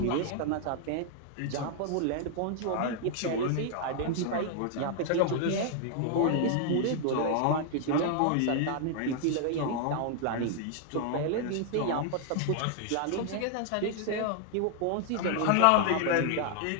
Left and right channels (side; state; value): both; different; correlation 0.00